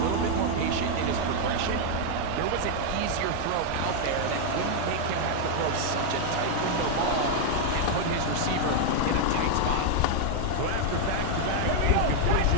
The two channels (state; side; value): different; both; correlation 0.00